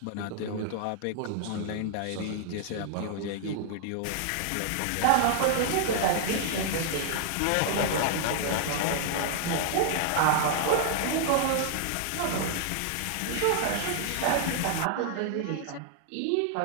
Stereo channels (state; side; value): different; both; correlation -0.01